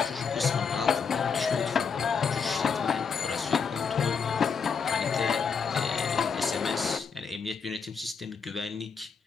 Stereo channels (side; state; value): right; quieter; 5.9 dB